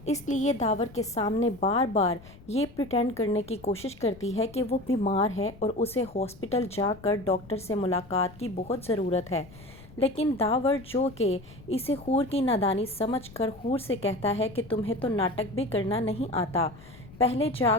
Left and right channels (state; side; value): noise; left; rumble, 20 dB below the sound